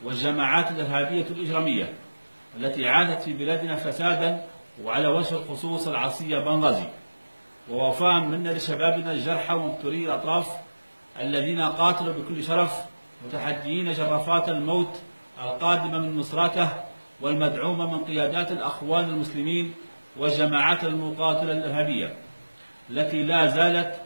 والجماعات الإرهابية الإجرامية التي عادت في بلادنا فسادا، وعلى وجه الخصوص العصية بنغازي. ووفاء منا لشبابنا الجرحى ومبتوري الأطراف الذين قاتلوا بكل شرف متحديين جرافات الموت القادمة من مصراته والمدعومة من قيادات الأخوان المسلمين والجماعات المقاتلة الإرهابية التي لا زالت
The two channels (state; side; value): inverted; both; correlation -1.00